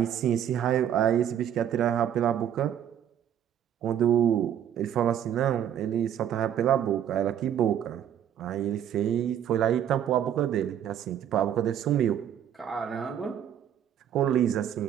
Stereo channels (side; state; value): left; quieter; 9.9 dB